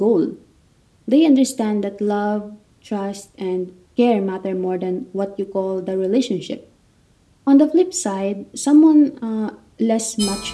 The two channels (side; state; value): both; identical; correlation 1.00